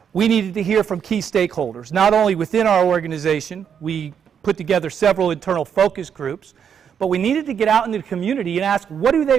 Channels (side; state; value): left; quieter; 7.8 dB